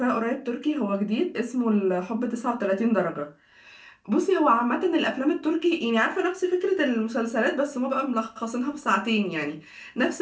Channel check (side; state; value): both; identical; correlation 1.00